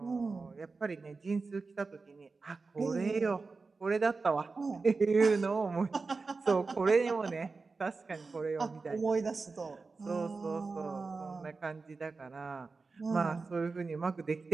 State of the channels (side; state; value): left; quieter; 4.1 dB